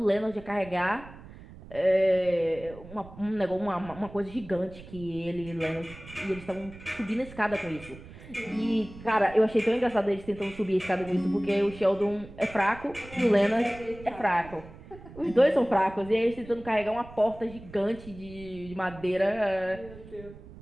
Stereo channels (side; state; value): right; noise; rumble, 17 dB below the sound